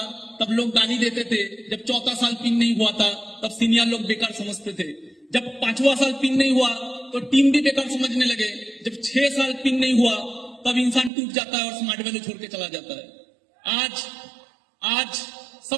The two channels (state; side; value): drops out; left; at 11.1 s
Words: तब लोग गाली देते थे। जब चौथा साल पिन नहीं हुआ था तब सीनियर लोग बेकार समझते थे। जब पांचवा साल पिन नहीं हुआ तो टीम भी बेकार समझने लगे। जब 6 साल पिन नहीं हुआ तब इंसान टूट जाता है और स्मार्ट वैल्यू छोड़ के चला जाता है। आज